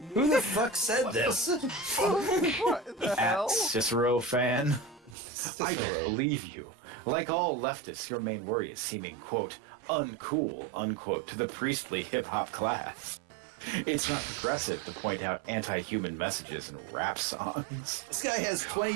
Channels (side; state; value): left; drops out; at 5.2 s